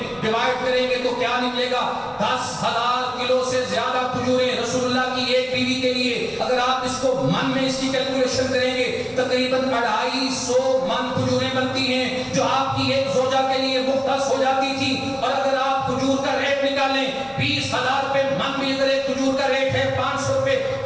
ڈیوائیڈ کریں گے تو کیا نکلے گا؟ 10,000 کلو سے زیادہ کھجوریں رسول اللہ کی ایک بیوی کے لیے۔ اگر آپ اس کو من میں اس کی کیلکولیشن کریں گے تقریباً 250 من کھجوریں بنتی ہیں جو آپ کی ایک زوجہ کے لیے مختص ہو جاتی تھی۔ اور اگر آپ کھجور کا ریٹ نکالیں 20,000 روپے من بھی، اگر ایک کھجور کا ریٹ ہے 500 روپے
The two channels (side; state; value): both; identical; correlation 1.00